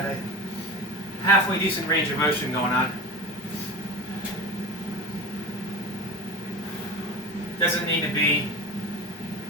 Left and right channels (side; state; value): both; normal; correlation 0.29